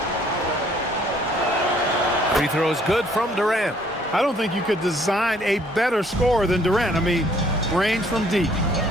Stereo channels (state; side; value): normal; both; correlation 0.62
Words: Free throw is good from Durant. I don't think you could design a better scorer than Durant. I mean, range from deep,